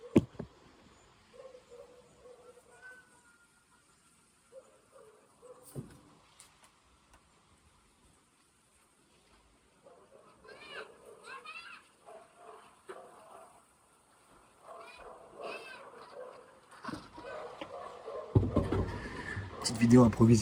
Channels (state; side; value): identical; both; correlation 1.00